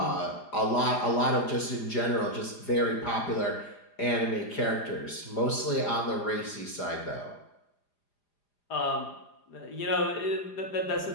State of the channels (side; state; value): right; late; 4.9 ms